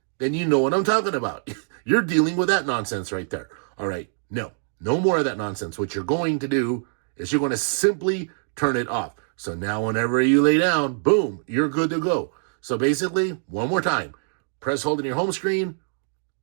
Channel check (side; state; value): left; silent; digital silence